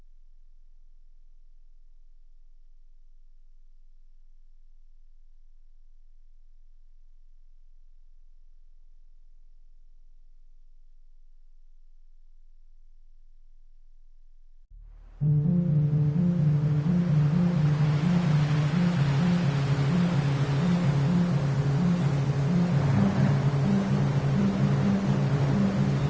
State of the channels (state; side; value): identical; both; correlation 1.00